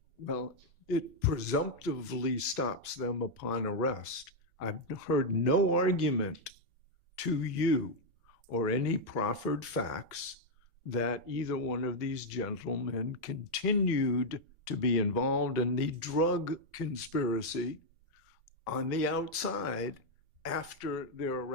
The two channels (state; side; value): normal; both; correlation 0.00